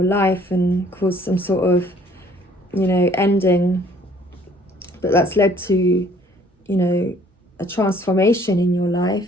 life and caused some sort of, you know, ending. But that's led to, you know, a transformation in your life.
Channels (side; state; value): both; normal; correlation 0.58